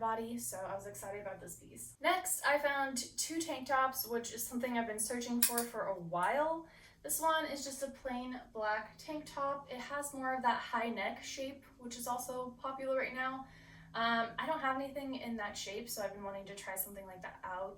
so I was excited about this piece. Next, I found two tank tops, which is something I've been searching for a while. This one is just a plain black tank top. It has more of that high neck shape, which is also popular right now. I don't have anything in that shape, so I've been wanting to try something like that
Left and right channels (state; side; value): identical; both; correlation 1.00